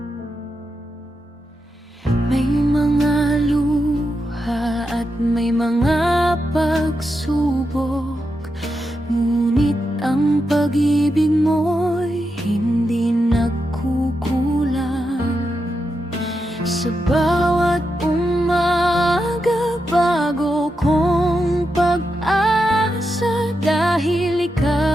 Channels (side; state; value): both; normal; correlation 0.86